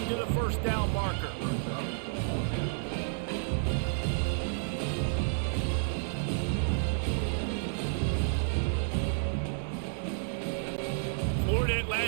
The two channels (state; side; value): silent; left; digital silence